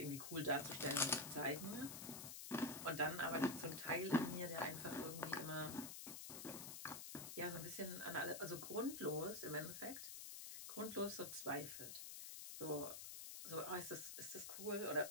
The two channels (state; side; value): noise; left; hiss, 7 dB below the sound